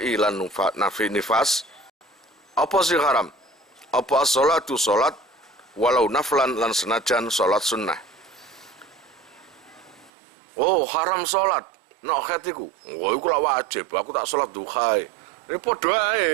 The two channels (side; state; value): left; drops out; at 10.1 s